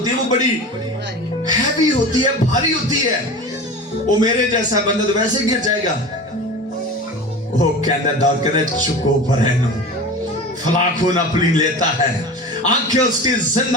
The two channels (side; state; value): both; normal; correlation 0.33